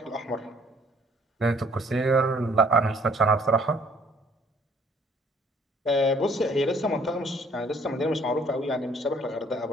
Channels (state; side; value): normal; both; correlation 0.60